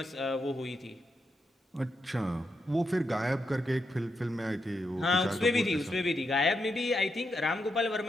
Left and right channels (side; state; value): both; normal; correlation 0.83